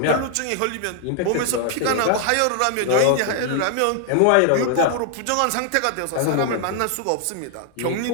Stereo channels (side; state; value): both; different; correlation 0.00